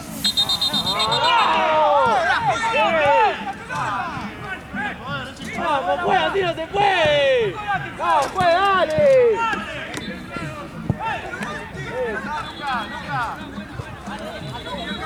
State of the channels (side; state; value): both; identical; correlation 1.00